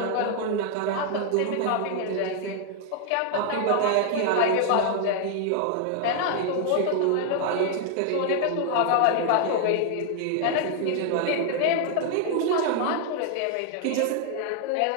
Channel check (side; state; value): both; different; correlation 0.00